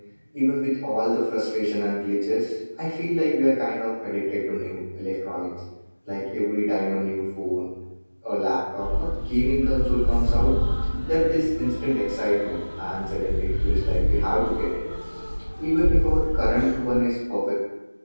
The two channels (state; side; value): inverted; both; correlation -1.00